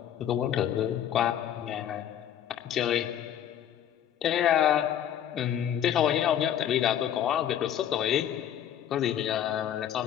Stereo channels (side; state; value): right; quieter; 10.2 dB